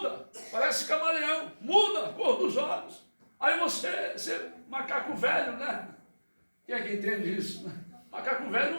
parece camaleão. Muda a cor dos olhos. Aí você macaco velho, né? Quem é que entende isso? Né? Macaco velho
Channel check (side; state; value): both; inverted; correlation -1.00